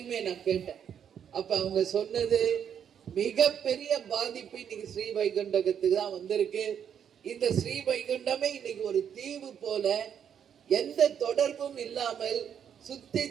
நான் கேட்டேன். அப்ப அவங்க சொன்னது, மிகப்பெரிய பாதிப்பு இன்னைக்கு ஸ்ரீ வைகுண்டத்துக்கு தான் வந்திருக்கு. இந்த ஸ்ரீ வைகுண்டமே இன்னைக்கு ஒரு தீவு போல, எந்த தொடர்பும் இல்லாமல் சுத்தி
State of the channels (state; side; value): quieter; left; 8.4 dB